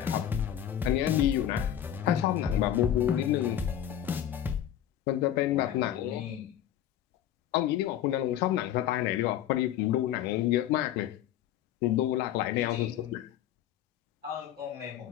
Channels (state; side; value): quieter; right; 11.0 dB